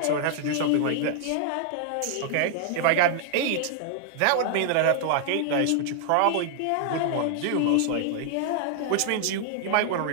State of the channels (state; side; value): different; both; correlation 0.00